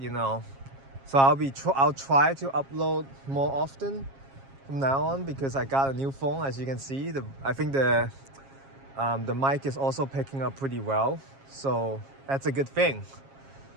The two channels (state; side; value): late; left; 7.4 ms